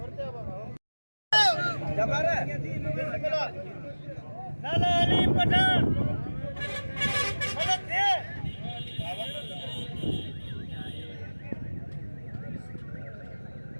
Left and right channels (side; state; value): both; inverted; correlation -1.00